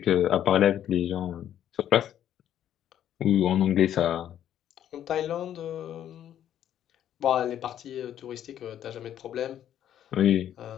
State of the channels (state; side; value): quieter; right; 10.7 dB